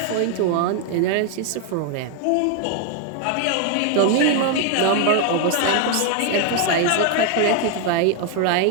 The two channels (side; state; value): both; different; correlation 0.00